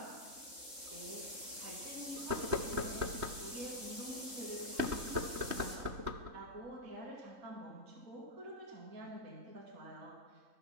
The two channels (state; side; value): late; left; 3.7 ms